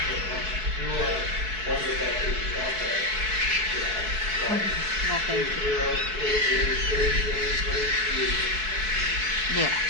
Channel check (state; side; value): late; left; 4.6 ms